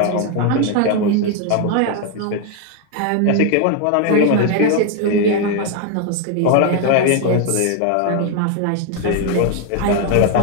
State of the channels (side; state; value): both; different; correlation 0.01